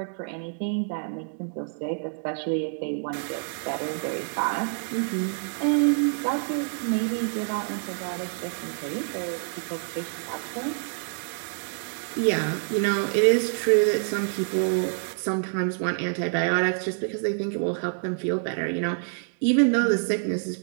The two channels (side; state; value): left; silent; digital silence